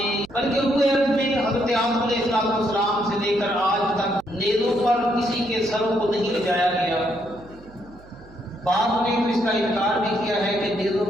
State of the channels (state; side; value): noise; right; hum, 23 dB below the sound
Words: بلکہ روئے عرب میں حضرت آدم علیہ السلام سے لے کر آج تک نیزوں پر کسی کے سروں کو نہیں لجایا گیا۔ بعد میں تو اس کا انکار بھی کیا ہے کہ نیزوں